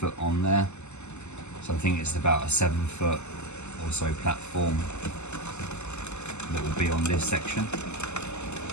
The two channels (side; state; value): right; late; 0.83 ms